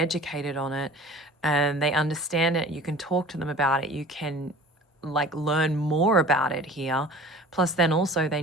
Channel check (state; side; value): normal; both; correlation 0.44